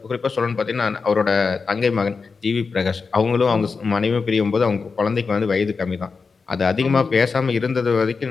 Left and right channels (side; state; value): right; quieter; 4.8 dB